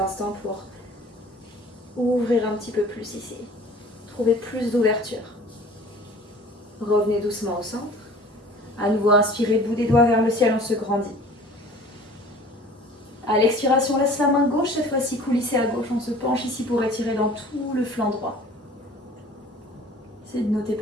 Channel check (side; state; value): both; normal; correlation 0.47